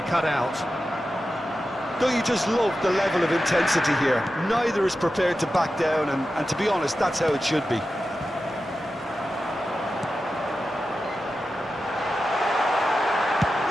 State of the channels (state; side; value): normal; both; correlation 0.92